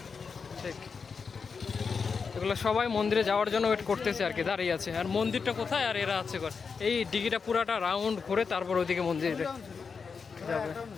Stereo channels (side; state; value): right; quieter; 5.4 dB